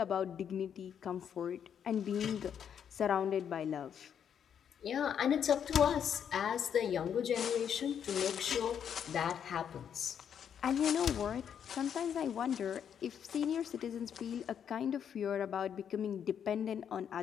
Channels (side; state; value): right; quieter; 8.4 dB